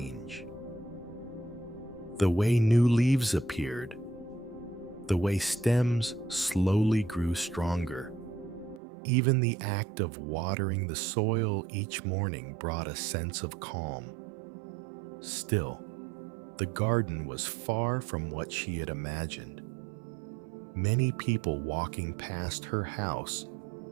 The way new leaves appeared, the way stems slowly grew stronger, Even the act of watering the soil each morning brought a sense of calm. Still, the garden was far from what she had imagined. Many people walking past her house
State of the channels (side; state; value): left; drops out; at 8.8 s